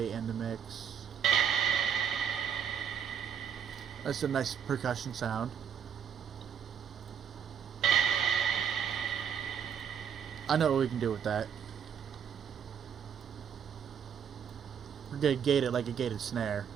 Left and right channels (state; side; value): quieter; left; 8.1 dB